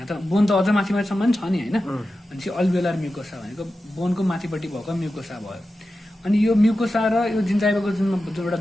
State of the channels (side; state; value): both; normal; correlation 0.92